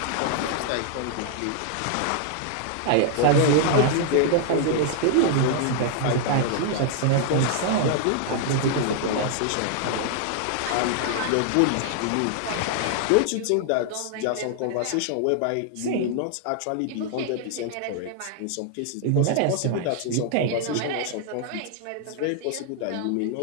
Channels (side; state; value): both; different; correlation 0.00